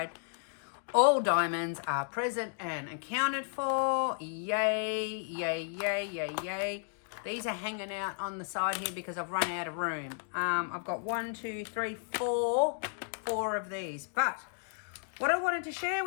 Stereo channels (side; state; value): right; silent; digital silence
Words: All diamonds are present and accounted for. Yay, yay, yay, yay, yay. These are hanging out on the side here because I've run out of room. I've got 1, 2, 3, 4 of these. But what I wanted to share